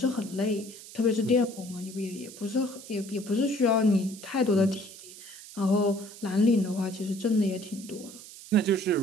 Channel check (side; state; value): right; noise; hiss, 16 dB below the sound